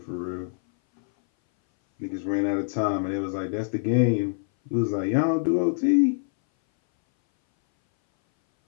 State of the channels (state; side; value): silent; right; 59 dB below the other